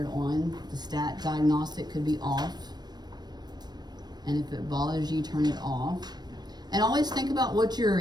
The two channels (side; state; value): left; late; 0.20 ms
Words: on. The stat diagnostic could be off. And if it bothers you, turn it off. And always think about what your